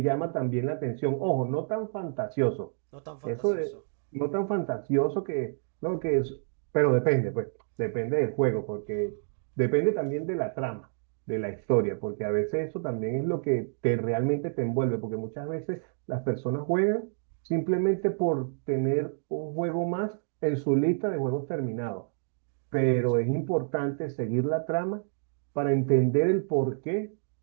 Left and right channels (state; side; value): silent; left; digital silence